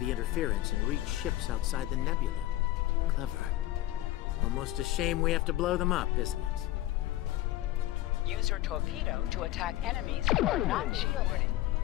interference and reach ships outside the nebula. Clever. Almost a shame we have to blow them up, isn't it? Use your torpedo to attack enemies who are not shielded.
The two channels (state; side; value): quieter; right; 15.5 dB